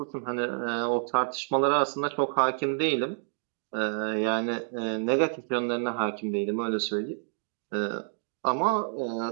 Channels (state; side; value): silent; left; digital silence